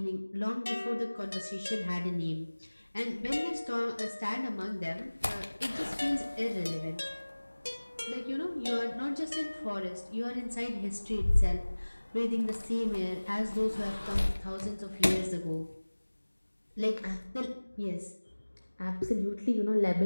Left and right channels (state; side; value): inverted; both; correlation -1.00